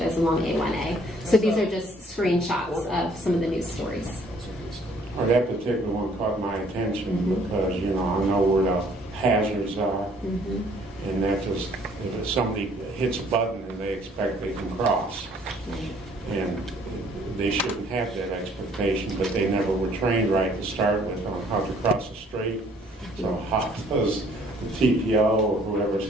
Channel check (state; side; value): normal; both; correlation 0.60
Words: along A1A. So these are just screenshots of some of the news stories. Or that particular one caught my attention because, you know, I know where the hazards are. And that just, if somebody hits a button and they expect they can cross. And they shouldn't have that expectation, but they never were trained right to start with on how to cross the street. So how does the TPO or whoever's